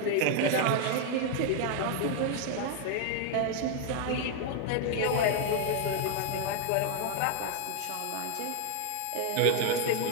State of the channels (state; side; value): different; both; correlation 0.00